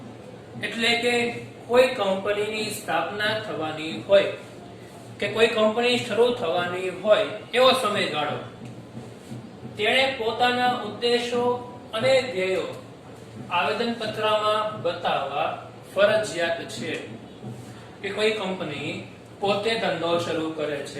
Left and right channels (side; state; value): both; identical; correlation 1.00